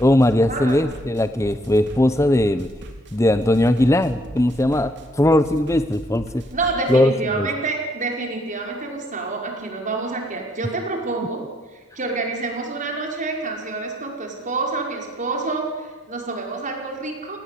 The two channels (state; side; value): normal; both; correlation 0.70